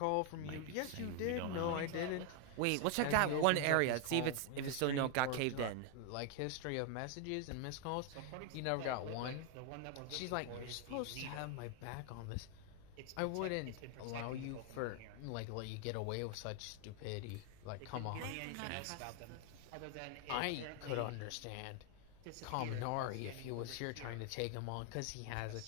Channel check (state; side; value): different; both; correlation 0.00